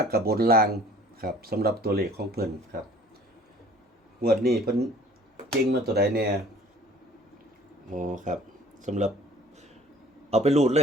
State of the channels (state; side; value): normal; both; correlation 0.51